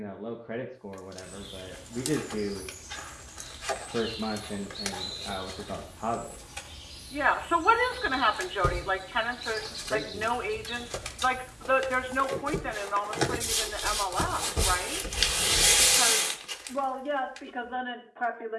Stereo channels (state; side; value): identical; both; correlation 1.00